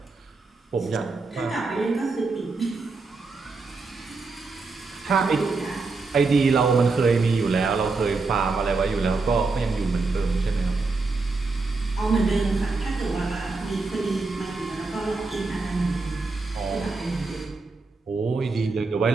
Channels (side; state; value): left; quieter; 3.9 dB